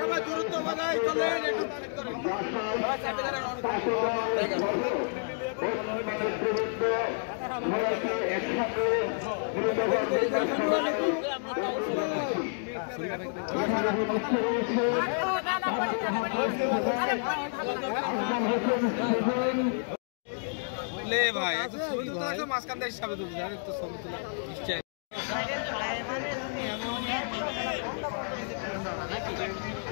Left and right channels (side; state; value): right; silent; digital silence